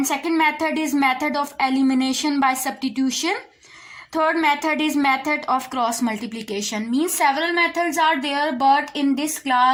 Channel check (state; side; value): identical; both; correlation 1.00